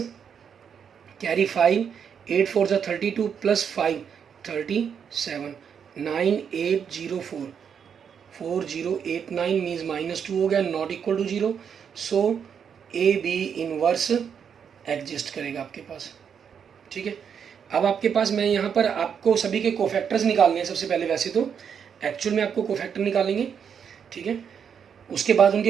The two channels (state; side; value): quieter; left; 7.4 dB